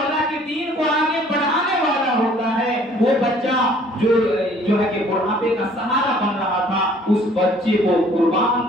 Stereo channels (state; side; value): normal; both; correlation 0.56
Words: के दीन को आगे बढ़ाने वाला होता है, वो बच्चा जो है कि बुढ़ापे का सहारा बन रहा था, उस बच्चे को